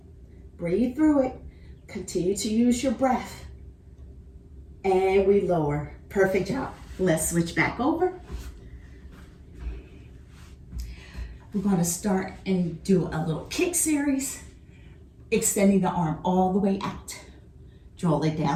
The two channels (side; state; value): both; identical; correlation 1.00